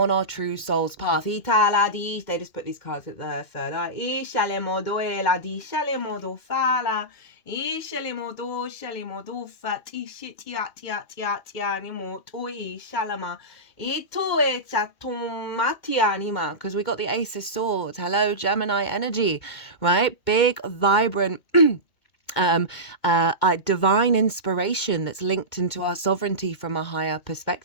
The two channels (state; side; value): late; right; 2.2 ms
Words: our true soul's path. They just put these cards at the third eye. Because we got the Ace of Swords. Hello, Gemini energy, right? Big, vibrant divine inspiration that's linked into our sovereignty from a higher